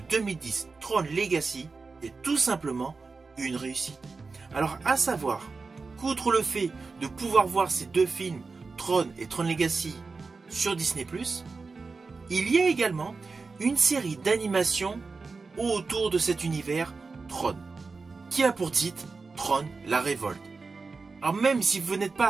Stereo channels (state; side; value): quieter; left; 4.3 dB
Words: Tron Legacy, est tout simplement une réussite. Alors à savoir qu'outre le fait de pouvoir voir ces deux films, Tron et Tron Legacy, sur Disney+, il y a également une série d'animations autour de cet univers Tron, qui a pour titre Tron la Révolte. Alors même si vous n'êtes